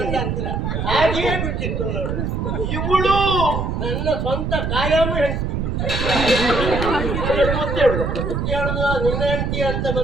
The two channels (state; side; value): noise; right; rumble, 1 dB below the sound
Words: ಅಂತರ ಹಾಗೆಯೇ ಬಿಟ್ಟಿತ್ತು ನೋಡು. ಇವಳು ನನ್ನ ಸ್ವಂತ ಕಾಯಂ ಹೆಂಡತಿ. ಹೇಳುದು ನಿನ್ನ ಹೆಂಡತಿ ಅಂತ